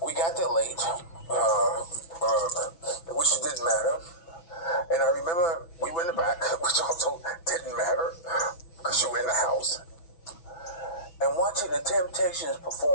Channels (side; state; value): right; late; 6.1 ms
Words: We got there late, which didn't matter. And I remember we were in the back, which also didn't matter because you were in the house. And watching the Temptations